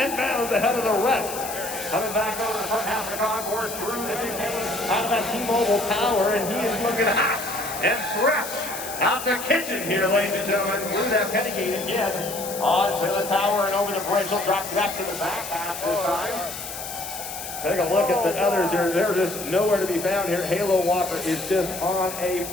bounds ahead of the rest. Coming back over the front half of the concourse through the chicane out of that T-Mobile tower, and he is looking hot and fresh out the kitchen here, ladies and gentlemen. Through that penny gate again, onto the tower and over the bridge. He'll drop back to the back half this time. Take a look at the others here. They're just nowhere to be found here. Halo Walker is just on a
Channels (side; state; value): left; noise; hiss, 9 dB below the sound